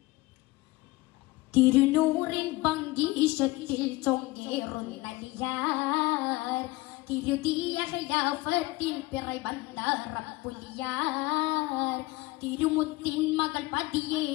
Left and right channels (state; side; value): quieter; right; 20.5 dB